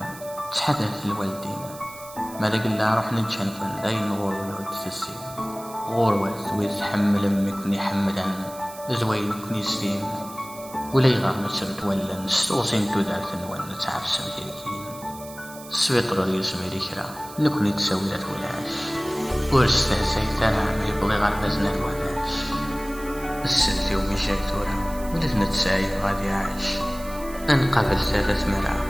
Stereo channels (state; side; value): noise; right; hiss, 17 dB below the sound